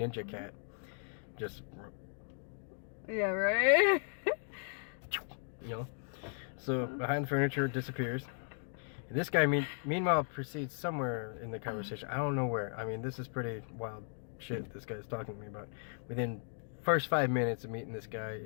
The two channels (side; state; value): right; silent; 53 dB below the other